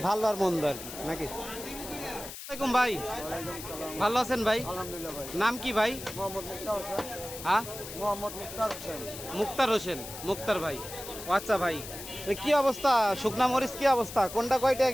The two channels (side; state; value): left; noise; hiss, 11 dB below the sound